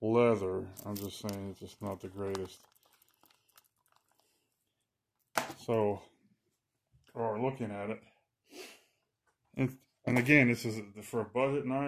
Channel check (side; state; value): both; identical; correlation 1.00